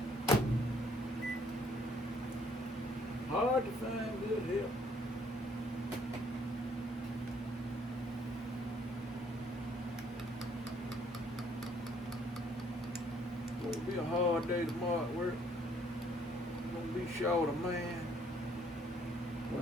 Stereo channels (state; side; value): normal; both; correlation 0.65